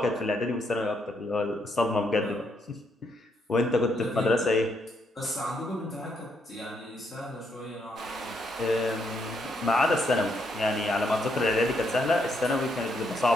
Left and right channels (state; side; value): normal; both; correlation 0.75